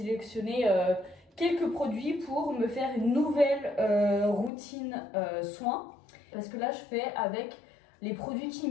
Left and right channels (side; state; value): right; drops out; at 4.5 s